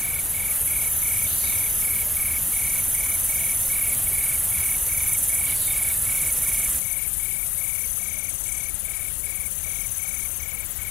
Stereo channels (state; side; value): drops out; right; at 6.8 s